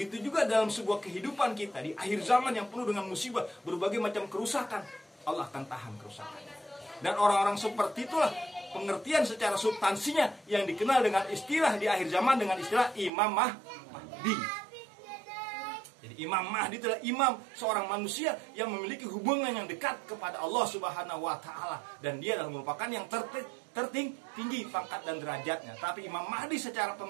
juga dalam sebuah kehidupan kita di akhir zaman yang penuh dengan musibah, berbagai macam kerusakan, Allah akan tahan kerusakannya. Dan orang-orang seperti itulah pengertian secara substansinya yang dikenal dengan istilah di akhir zaman dengan istilah Imam Mahdi. Jadi Imam Mahdi adalah imam, seorang manusia yang memiliki hubungan yang dekat kepada Allah Subhanahu wa taala, dan dia adalah merupakan yang tertinggi pangkat dan derajatnya. Tapi Imam Mahdi secara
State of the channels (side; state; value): left; drops out; at 13.1 s